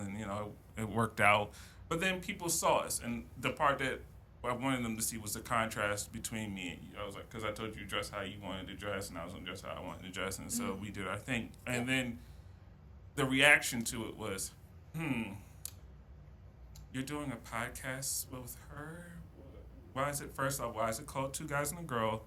it worked out. But then people saw us, and the part that I wanted them to see was the contrast between me and you. I was like, because I told you dress how you wanted to dress, and I was going to dress how I wanted to dress, and so we did our thing. And then the reaction to it was, you're doing a podcast with her? Why is it called Two Guys and a Girl?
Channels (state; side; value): identical; both; correlation 1.00